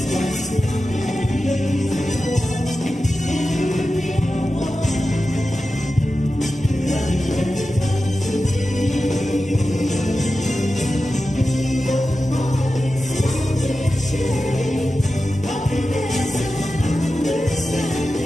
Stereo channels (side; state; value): both; normal; correlation 0.93